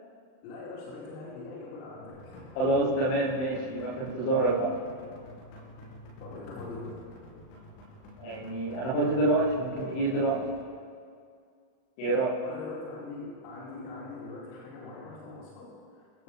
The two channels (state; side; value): late; right; 38 ms